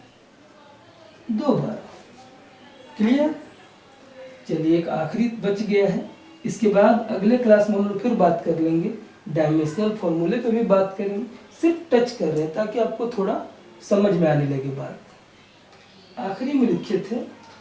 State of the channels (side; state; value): both; identical; correlation 1.00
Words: 2 bar. Clear? चलिए एक आखिरी बच गया है, इसके बाद अगले क्लास में हम लोग फिर बात कर लेंगे, डायमेंशनल फॉर्मूले पे भी बात करेंगे। सिर्फ टच कर रहे हैं ताकि आपको थोड़ा समझ में आने लगे बात। आखिरी में लिखे थे